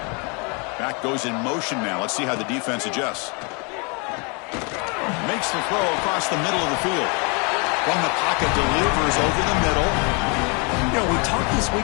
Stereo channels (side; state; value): right; quieter; 33.0 dB